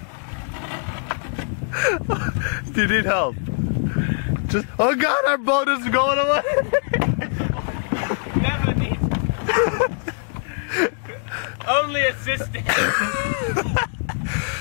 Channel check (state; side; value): silent; right; digital silence